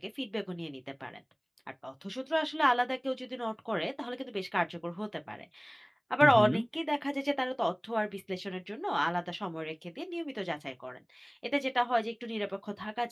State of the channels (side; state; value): both; identical; correlation 1.00